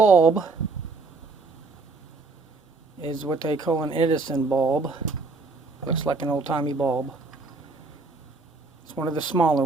is what they call an Edison bulb. Looks like an old-timey bulb. It's one of the smaller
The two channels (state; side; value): quieter; left; 3.8 dB